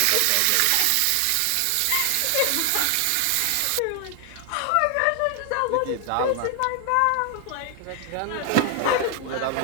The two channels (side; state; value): both; different; correlation 0.00